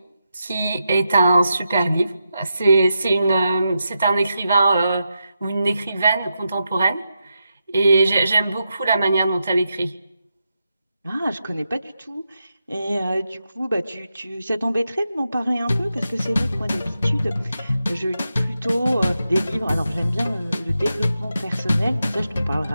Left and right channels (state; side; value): inverted; both; correlation -0.87